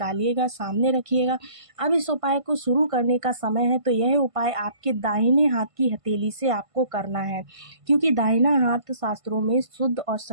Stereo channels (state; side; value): late; left; 1.5 ms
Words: सामने रखिएगा। अब इस उपाय को शुरू करने का समय है, तो यह उपाय आपके दाहिने हाथ की हथेली से आपको करना है, क्योंकि दाहिना हाथ शास्त्रों में शुद्ध और